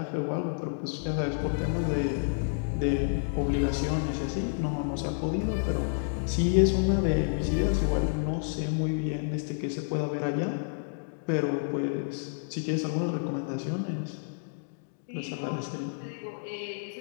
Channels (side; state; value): right; silent; digital silence